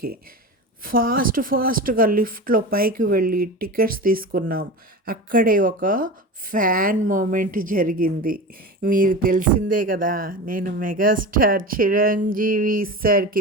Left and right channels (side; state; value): both; normal; correlation 0.28